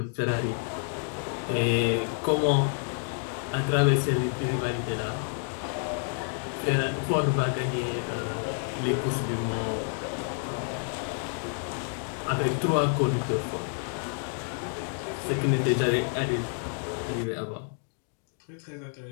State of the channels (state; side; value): silent; right; 59 dB below the other